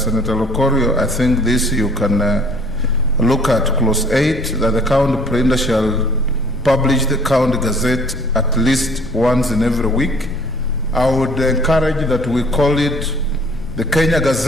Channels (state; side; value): noise; left; rumble, 13 dB below the sound